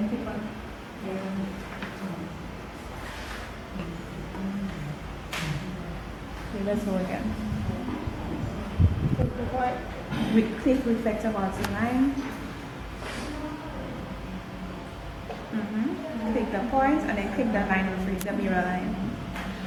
click on. Okay, let's go again. Click the point. Click reflect about the line. Click the point and then click the line with the mirror line.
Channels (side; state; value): both; identical; correlation 1.00